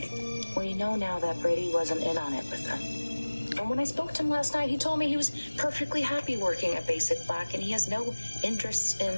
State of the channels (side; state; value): both; inverted; correlation -1.00